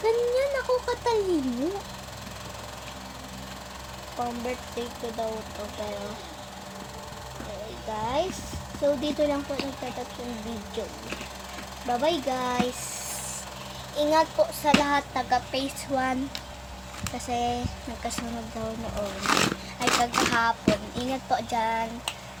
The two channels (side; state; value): both; identical; correlation 1.00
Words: ako katalino. Pang birthday ko daw to, pero okay guys. So, dito lang po nagtatapos yung video. Bye-bye guys. Ingat po sa lahat taga phase 1. Kasi nagkasunod daw noon. Ay, kagahapon. Ingat po dyan.